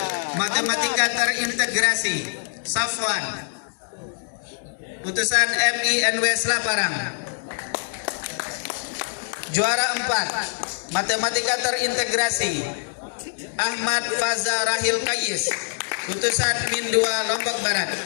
Matematika Terintegrasi Safwan, utusan MINW Selaparang. Juara 4 Matematika Terintegrasi Ahmad Faza Rahil Kayis, utusan Min 2 Lombok Barat.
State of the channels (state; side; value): silent; right; digital silence